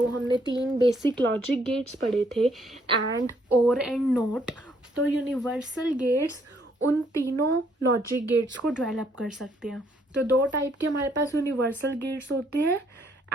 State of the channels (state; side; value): normal; both; correlation 0.69